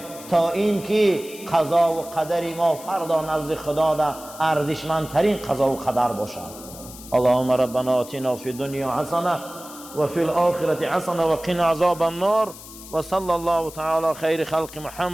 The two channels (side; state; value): left; noise; hiss, 16 dB below the sound